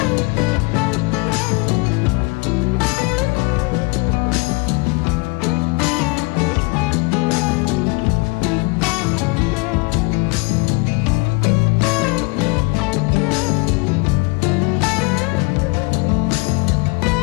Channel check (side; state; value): right; quieter; 29.2 dB